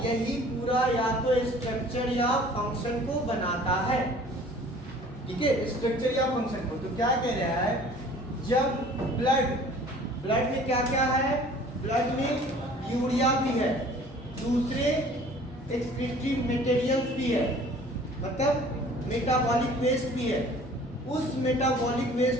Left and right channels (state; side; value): normal; both; correlation 0.50